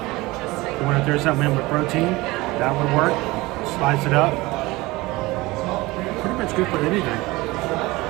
You want to throw something in with protein? That would work. Slice it up. Pretty much good for anything.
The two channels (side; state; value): left; quieter; 21.0 dB